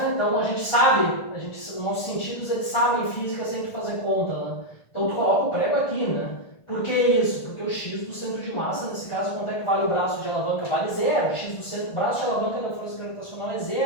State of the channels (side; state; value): right; late; 1.5 ms